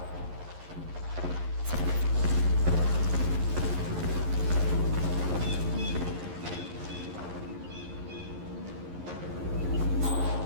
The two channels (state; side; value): late; left; 11 ms